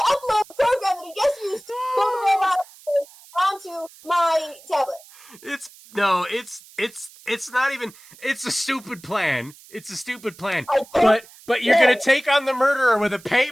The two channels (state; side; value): noise; right; hiss, 23 dB below the sound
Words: upload the program that he just used to pull the robot onto my tablet? It's not even. It's a stupid plan. It's a stupid plan. I don't But you're gonna take on the murderer with a